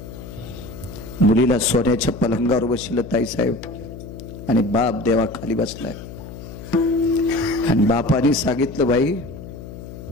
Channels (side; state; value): left; noise; hum, 13 dB below the sound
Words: मुलीला सोन्याच्या पलंगावर बसलं ताईसाहेब, आणि बाप देवा खाली बसलाय. आणि बापाने सांगितलं, बाई